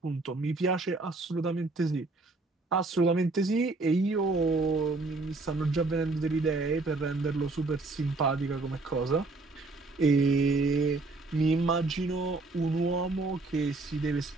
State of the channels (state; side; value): quieter; left; 3.4 dB